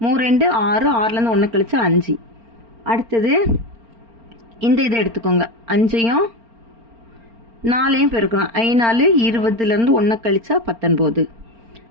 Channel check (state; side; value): late; left; 4.4 ms